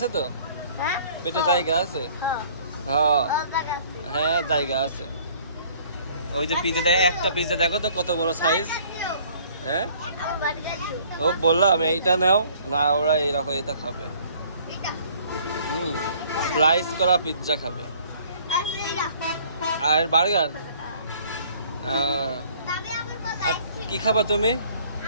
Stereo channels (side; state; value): both; inverted; correlation -0.56